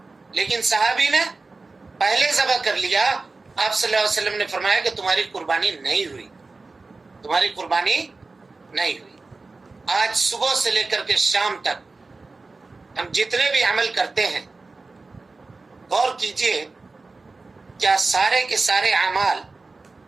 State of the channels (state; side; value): quieter; left; 3.7 dB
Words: لیکن صحابی نے پہلے ذبح کر لیا۔ آپ صلی اللہ علیہ وسلم نے فرمایا کہ تمہاری قربانی نہیں ہوئی، تمہاری قربانی نہیں ہوئی۔ آج صبح سے لے کر کے شام تک ہم جتنے بھی عمل کرتے ہیں، غور کیجئے کیا سارے کے سارے اعمال